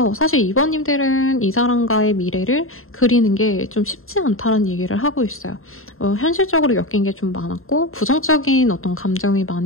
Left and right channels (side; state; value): right; late; 0.61 ms